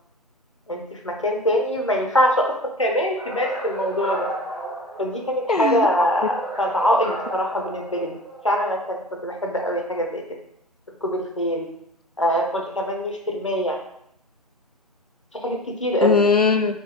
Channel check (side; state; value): both; normal; correlation 0.37